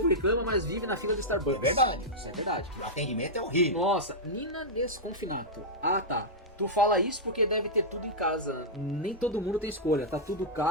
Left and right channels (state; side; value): normal; both; correlation -0.09